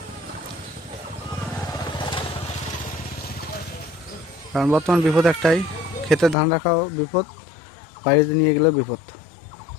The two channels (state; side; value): drops out; right; at 6.4 s